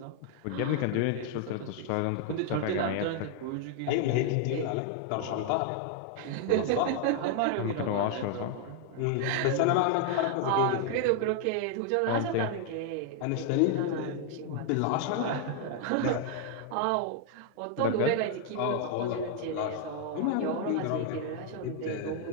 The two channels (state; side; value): different; both; correlation 0.00